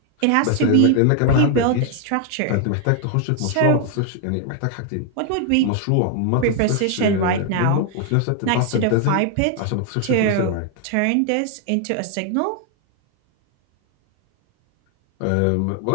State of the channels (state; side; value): different; both; correlation 0.00